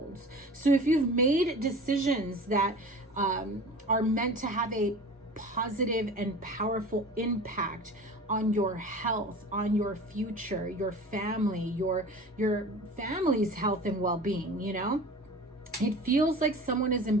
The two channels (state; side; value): normal; both; correlation 0.39